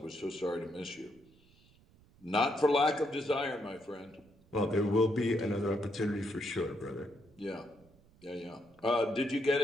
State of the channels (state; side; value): noise; right; rumble, 28 dB below the sound